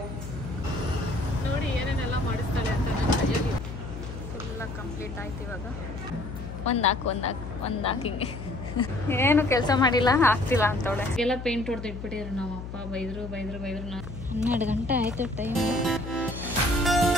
ನೋಡಿ ಏನೇನೆಲ್ಲ ಮಾಡಿಸ್ತಾಳೆ ಅಂತ. ನನ್ನ ಕೈಯಲ್ಲಿ ಫುಲ್ಲ ಕಂಪ್ಲೀಟ್ ಆಯ್ತು. ಇವಾಗ ಒಂದಾಕ್ ಹಿಂಗೆ ಏನು ಕೆಲಸ ಮಾಡಿಲ್ಲ, ಆಗ್ತಿಲ್ಲ ಅಂತವಳೆ. ಎಲ್ಲ ಪೇಂಟ್ ಹೊಡೆದು ಇಟ್ಬಿಟ್ಟಿದ್ರು. ನಾವು ಅಪ್ಪ ಬೈದ್ರು. 12 ಗಂಟೆ ಆಯ್ತು time.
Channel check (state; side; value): noise; left; hum, 9 dB below the sound